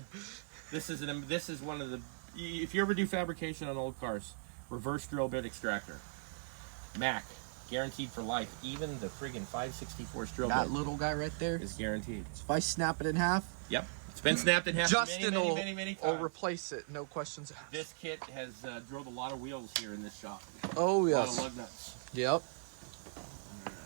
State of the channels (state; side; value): silent; left; digital silence